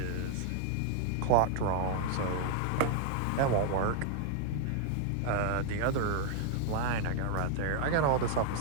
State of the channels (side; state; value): both; different; correlation -0.01